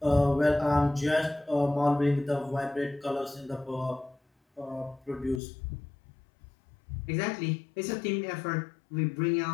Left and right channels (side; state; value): right; drops out; at 5.4 s